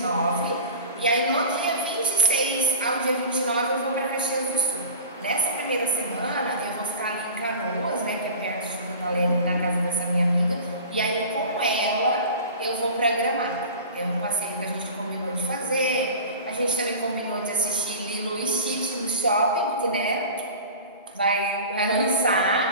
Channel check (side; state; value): both; inverted; correlation -0.36